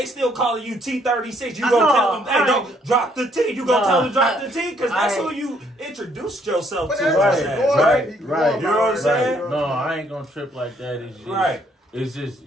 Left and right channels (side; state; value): both; normal; correlation 0.67